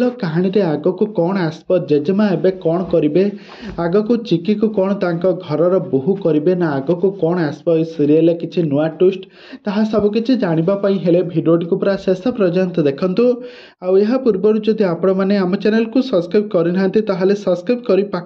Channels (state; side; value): identical; both; correlation 1.00